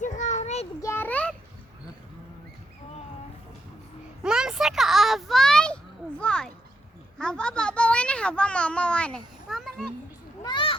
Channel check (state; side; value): normal; both; correlation 0.80